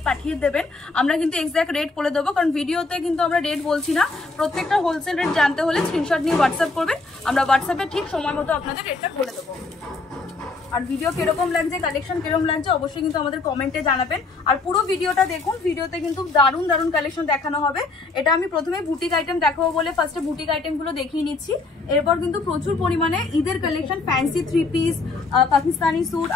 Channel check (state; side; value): quieter; right; 3.7 dB